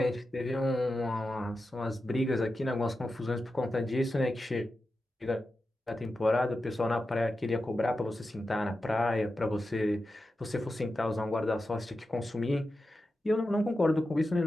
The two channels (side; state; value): both; normal; correlation 0.91